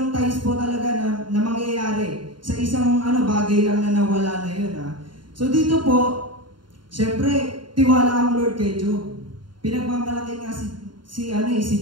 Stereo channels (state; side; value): late; left; 0.72 ms